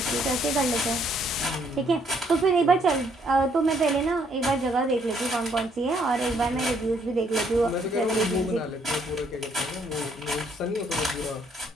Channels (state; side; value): normal; both; correlation 0.68